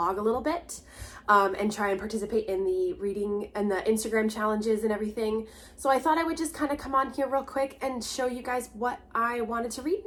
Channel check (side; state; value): both; identical; correlation 1.00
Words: a little bit and try and participate in the reading and the Instagram challenges and everything. So I thought I would just kind of come on here real quick and show you guys what I wanted to read